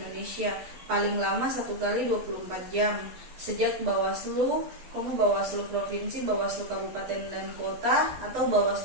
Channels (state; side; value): late; left; 12 ms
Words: paling lama 1 kali 24 jam sejak Bawaslu, Bawaslu Provinsi, Bawaslu Kabupaten dan Kota, atau